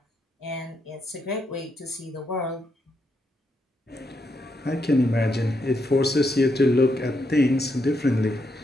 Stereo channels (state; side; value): normal; both; correlation 0.80